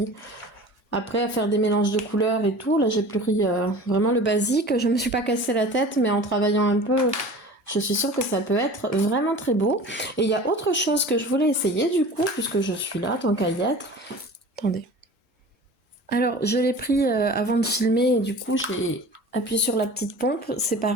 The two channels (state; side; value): normal; both; correlation 0.40